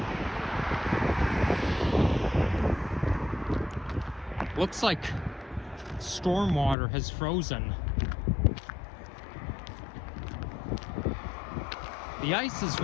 Looks like stormwater has frozen. The ice is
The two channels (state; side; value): drops out; right; at 6.8 s